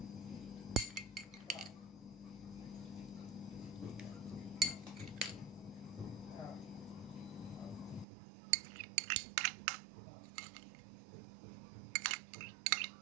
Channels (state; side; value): drops out; left; at 8.1 s